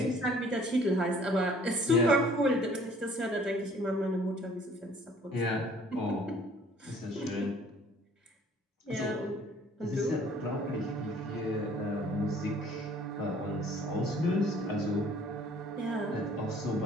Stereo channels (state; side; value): normal; both; correlation 0.55